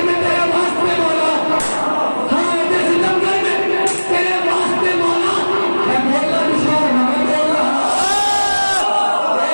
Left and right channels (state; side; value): inverted; both; correlation -1.00